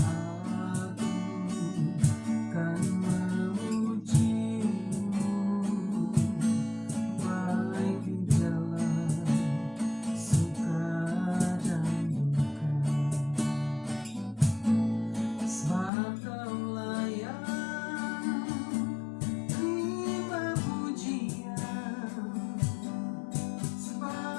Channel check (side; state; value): right; drops out; at 15.9 s